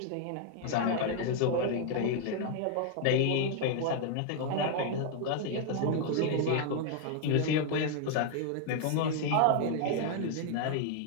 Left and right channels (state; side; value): different; both; correlation 0.00